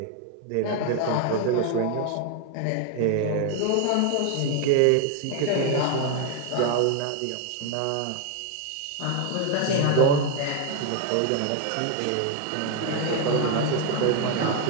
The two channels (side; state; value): both; different; correlation 0.01